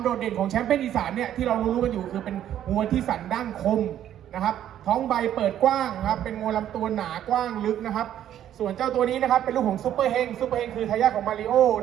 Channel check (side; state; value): left; quieter; 11.1 dB